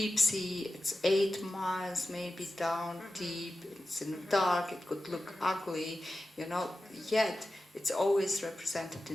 sea, it's 8 miles maybe down deep, it's in the dark, it could look ugly, yet it's always represented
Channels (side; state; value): both; normal; correlation 0.94